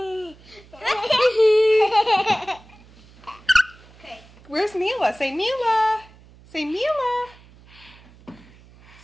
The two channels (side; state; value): right; noise; hum, 25 dB below the sound